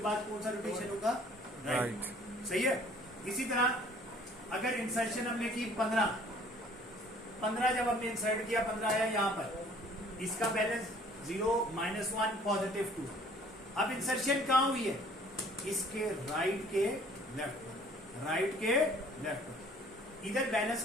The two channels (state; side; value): normal; both; correlation 0.55